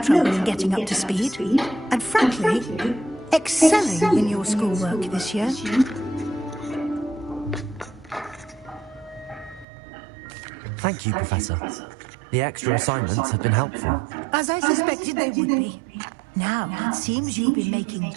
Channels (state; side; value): drops out; left; at 9.7 s